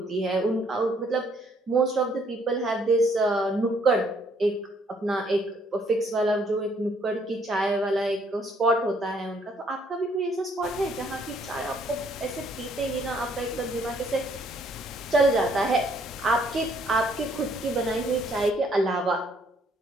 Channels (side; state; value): both; normal; correlation 0.66